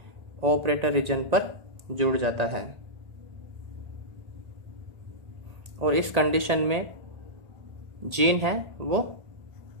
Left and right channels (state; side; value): late; left; 1.8 ms